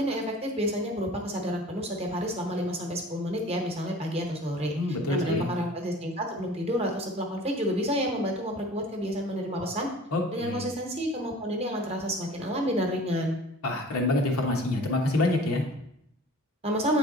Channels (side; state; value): both; normal; correlation 0.44